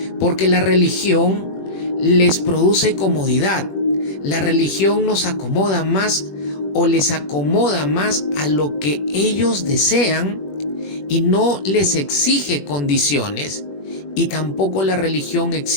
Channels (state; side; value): late; right; 21 ms